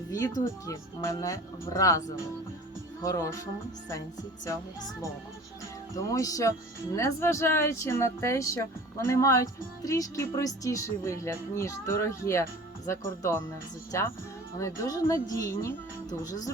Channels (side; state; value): both; normal; correlation 0.41